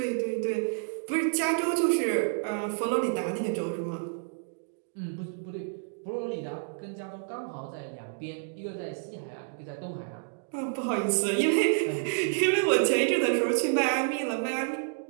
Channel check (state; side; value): silent; left; digital silence